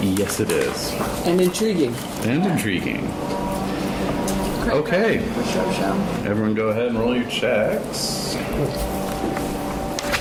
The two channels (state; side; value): identical; both; correlation 1.00